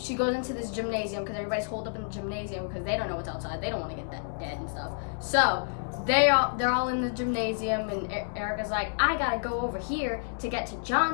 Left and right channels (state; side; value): silent; right; 58 dB below the other